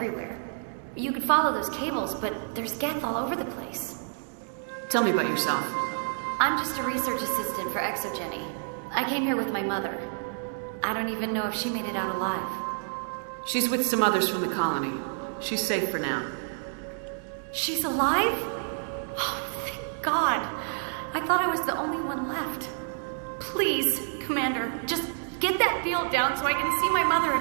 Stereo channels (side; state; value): left; silent; digital silence